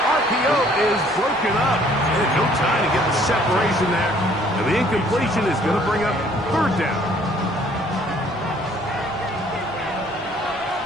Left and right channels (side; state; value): both; normal; correlation 0.60